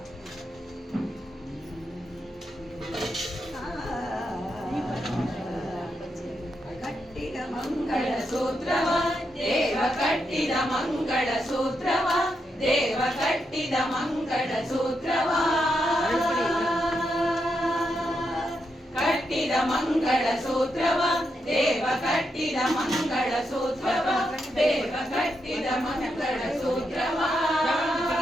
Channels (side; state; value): both; normal; correlation 0.83